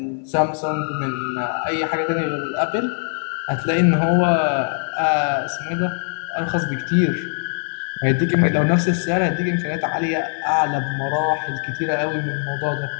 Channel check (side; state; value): right; silent; 59 dB below the other